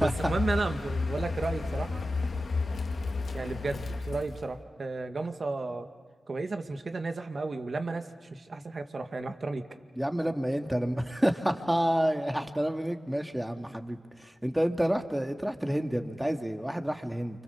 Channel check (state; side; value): normal; both; correlation 0.96